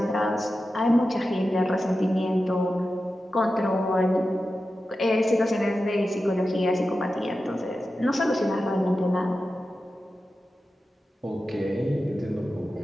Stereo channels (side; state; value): both; normal; correlation 0.92